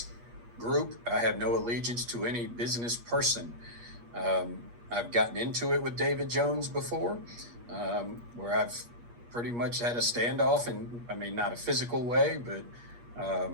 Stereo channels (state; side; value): late; left; 8.4 ms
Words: group. I have no allegiance to any business person. I've gotten into it with David Jones before, where I've pretty much had a standoff, and I mean, not a physical way, but,